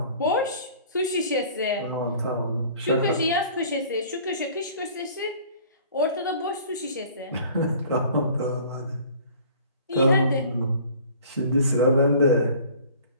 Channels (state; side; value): inverted; both; correlation -0.49